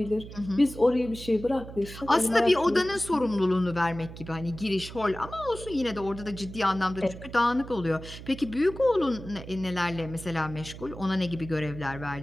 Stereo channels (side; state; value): right; noise; hum, 13 dB below the sound